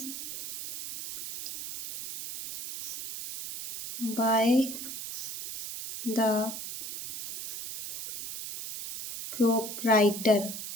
by the proprietor।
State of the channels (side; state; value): right; noise; hiss, 8 dB below the sound